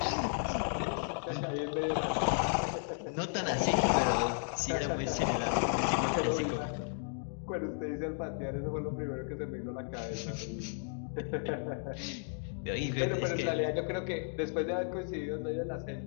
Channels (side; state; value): right; silent; 55 dB below the other